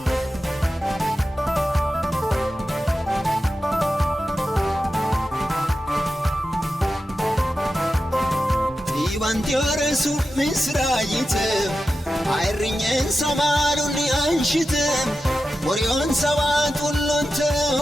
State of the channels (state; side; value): normal; both; correlation 0.91